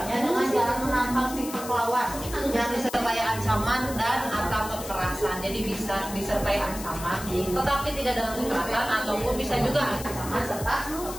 dengan jalan menantang pihak lawan yang disertai ancaman dan atau kekerasan. Jadi bisa disertai ancaman, tetapi tidak dengan kekerasan, ataupun bisa juga ancaman serta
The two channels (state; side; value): noise; left; hiss, 11 dB below the sound